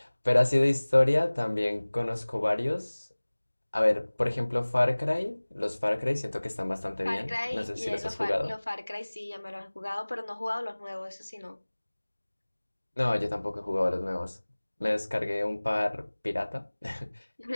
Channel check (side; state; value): both; inverted; correlation -1.00